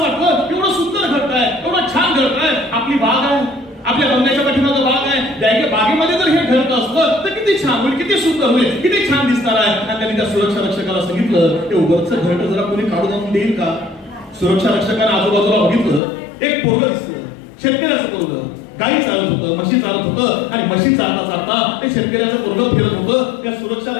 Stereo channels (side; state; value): right; drops out; at 16.0 s